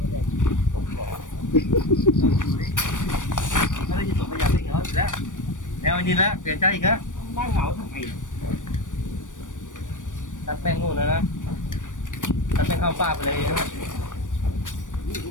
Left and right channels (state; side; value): late; right; 0.87 ms